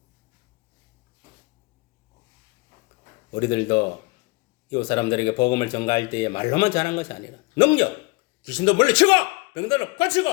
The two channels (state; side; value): quieter; right; 26.0 dB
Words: 우리들도 이웃 사람들에게 복음을 전가할 때에 말로만 전한 것이 아니라 능력, 귀신도 물리치고 병들을 고치고